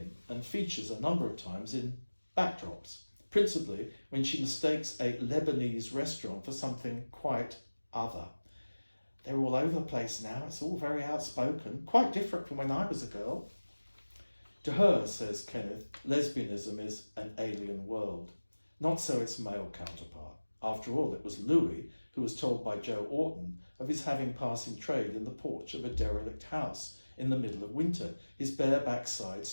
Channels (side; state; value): both; inverted; correlation -1.00